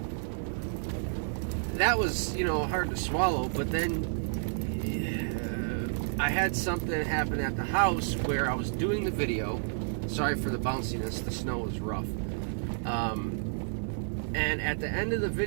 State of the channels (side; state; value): left; silent; 55 dB below the other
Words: that was, you know, hard to swallow. But then I had something happen at the house where I was doing the video. Sorry for the bounciness, the snow was rough. And at the end of the